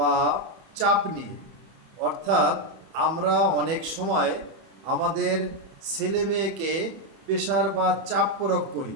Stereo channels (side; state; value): left; late; 31 ms